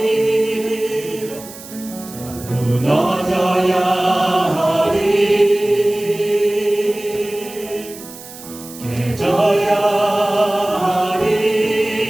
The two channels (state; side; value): noise; right; hiss, 16 dB below the sound